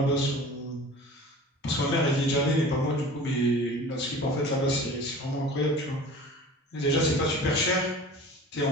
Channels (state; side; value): normal; both; correlation 0.40